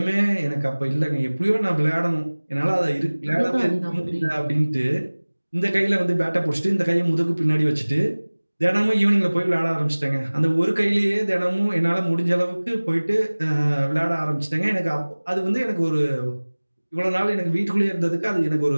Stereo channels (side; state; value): both; inverted; correlation -1.00